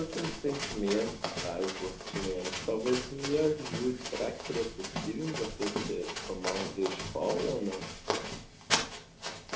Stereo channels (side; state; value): both; identical; correlation 1.00